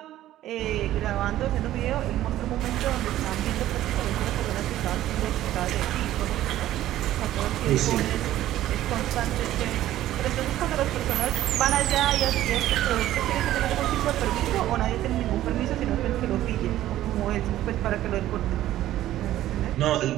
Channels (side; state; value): left; quieter; 13.7 dB